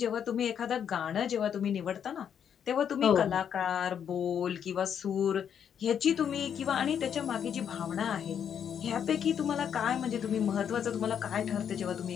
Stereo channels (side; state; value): right; quieter; 8.3 dB